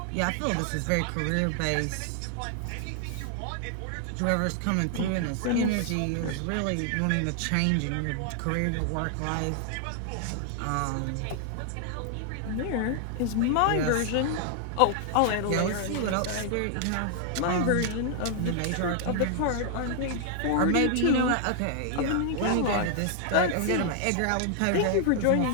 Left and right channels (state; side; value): different; both; correlation 0.00